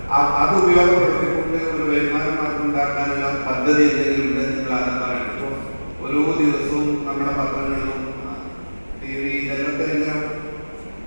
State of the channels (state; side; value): inverted; both; correlation -1.00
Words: അത് ഉപയോഗപ്പെടുത്തിക്കൊണ്ട് ഒരു വരുമാന മാർഗം ഉണ്ടാക്കാനുള്ള പദ്ധതി എന്തെങ്കിലും ഉണ്ടെന്ന് നിങ്ങൾ ആദ്യം പറയണം. ഇപ്പോൾ ഓരോ ദിവസവും നമ്മുടെ പത്രങ്ങളിലും TV ഇതിലൊക്കെ ഇങ്ങനെ